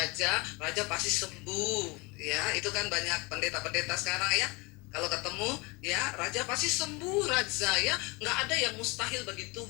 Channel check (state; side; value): quieter; right; 26.6 dB